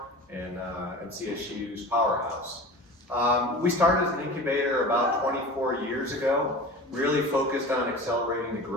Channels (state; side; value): normal; both; correlation 0.35